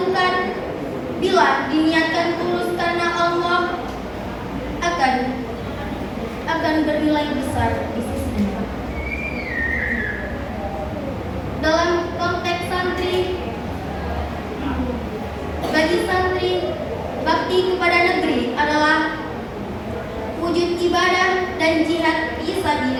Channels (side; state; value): both; identical; correlation 1.00